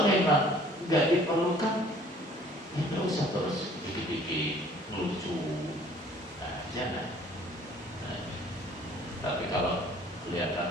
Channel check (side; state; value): both; normal; correlation 0.55